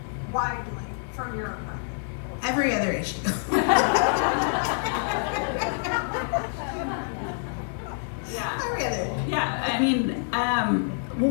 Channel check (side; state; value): right; silent; digital silence